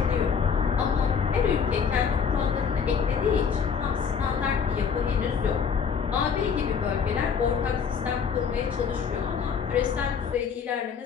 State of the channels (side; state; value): right; quieter; 6.5 dB